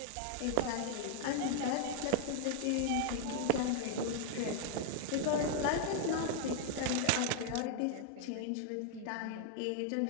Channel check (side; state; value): both; different; correlation 0.00